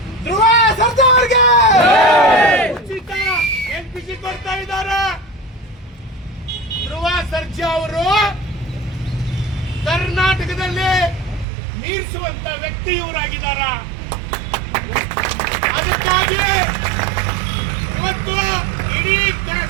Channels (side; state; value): left; drops out; at 11.5 s